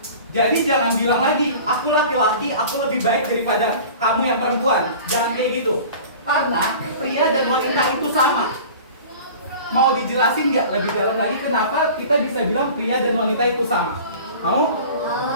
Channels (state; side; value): inverted; both; correlation -0.41